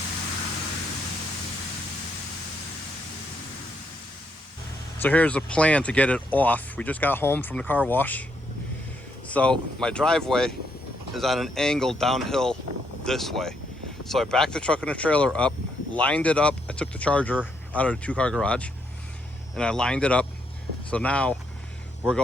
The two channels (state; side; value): normal; both; correlation 0.75